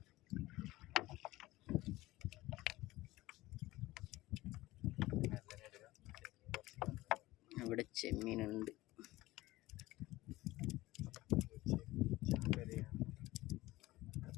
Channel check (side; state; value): right; quieter; 18.2 dB